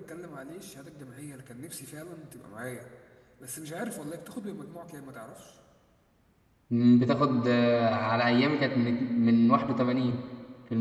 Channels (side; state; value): both; identical; correlation 1.00